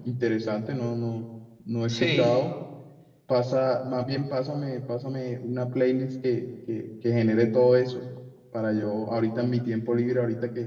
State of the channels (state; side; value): identical; both; correlation 1.00